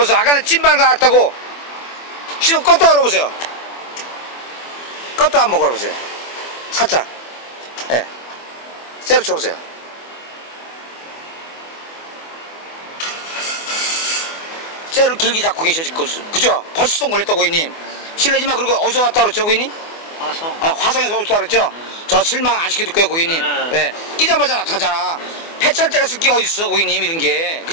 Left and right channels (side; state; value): right; late; 24 ms